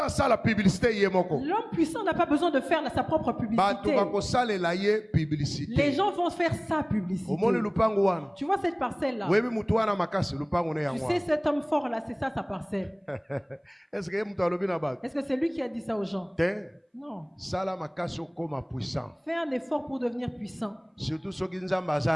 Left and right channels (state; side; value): identical; both; correlation 1.00